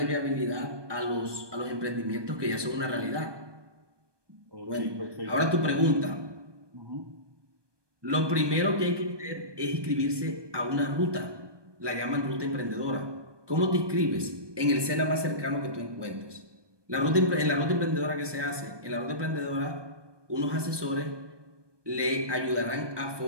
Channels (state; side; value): late; left; 1.2 ms